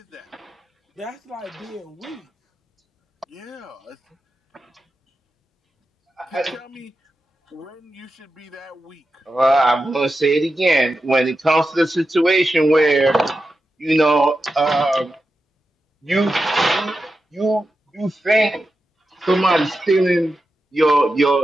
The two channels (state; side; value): normal; both; correlation 0.90